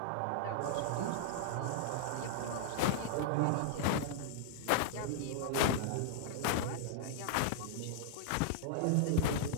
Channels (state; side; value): different; both; correlation -0.01